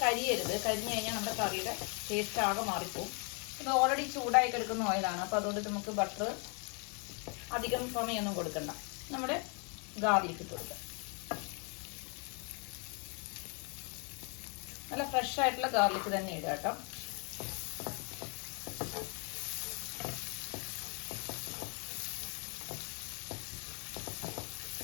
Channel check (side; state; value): right; quieter; 36.6 dB